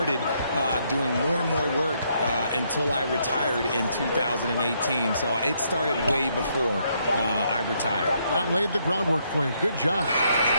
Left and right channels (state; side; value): inverted; both; correlation -0.74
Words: doing more and more work until I retired in 2018. So it started way before I retired. That laid the groundwork for you. Good job.